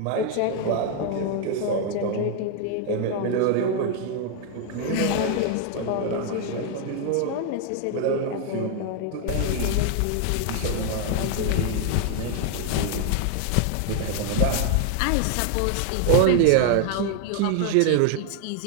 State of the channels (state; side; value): different; both; correlation 0.00